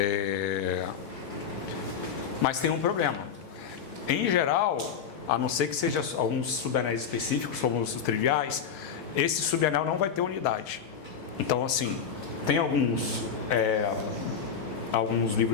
tem um problema. Em geral, a não ser que seja alguns subanéis específicos, como os triviais, esse subanel não vai ter unidade. Então, assim, tem alguns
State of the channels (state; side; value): quieter; right; 7.1 dB